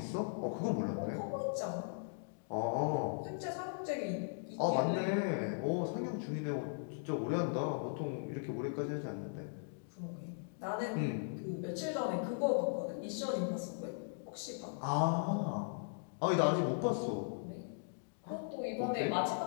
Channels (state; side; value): silent; right; digital silence